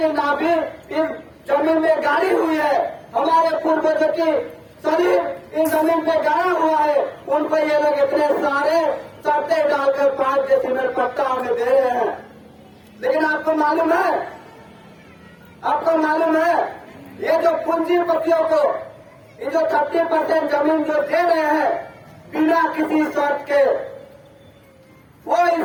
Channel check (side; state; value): both; identical; correlation 1.00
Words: नाभि इस जमीन में गाड़ी हुई है, हमारे पूर्वजों की शरीर इन जमीन पे गाड़ा हुआ है, उन पर ये लोग इतने सारे शर्तें डालकर 5 डेसिबल पट्टा हमें दे रहे हैं। लेकिन आपको मालूम है, ये जो पूंजीपतियों को ये जो 30% जमीन जो दे रहे हैं बिना किसी शर्त के, वो